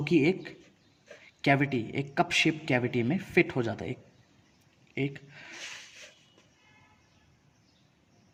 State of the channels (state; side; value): identical; both; correlation 1.00